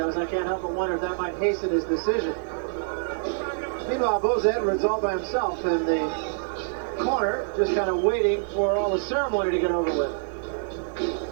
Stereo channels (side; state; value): left; silent; 61 dB below the other